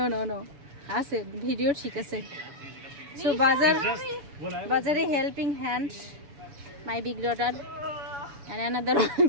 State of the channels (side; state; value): left; late; 7.0 ms